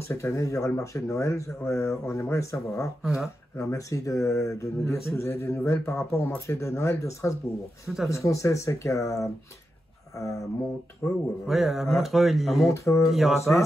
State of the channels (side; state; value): both; normal; correlation 0.88